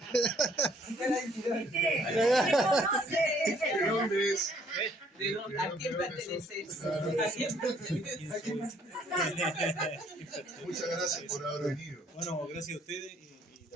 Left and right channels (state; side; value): normal; both; correlation 0.63